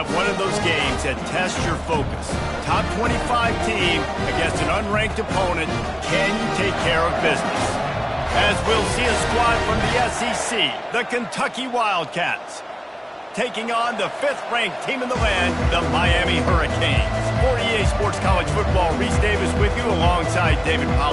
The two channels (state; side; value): identical; both; correlation 1.00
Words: one of those games that tests your focus. Top 25 team against an unranked opponent. Can you take care of business? As we'll see a squad from the SEC, the Kentucky Wildcats, taking on the 5th-ranked team in the land, the Miami Hurricanes. For EA Sports College Football, Reese Davis with you alongside David